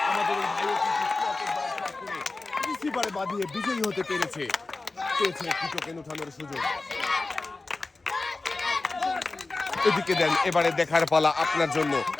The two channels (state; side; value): quieter; right; 3.4 dB